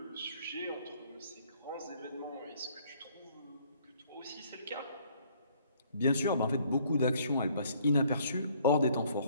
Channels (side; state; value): both; inverted; correlation -0.62